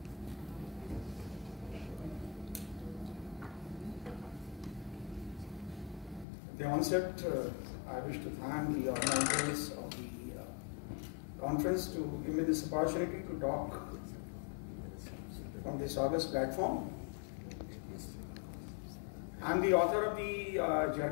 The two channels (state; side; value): drops out; right; at 6.2 s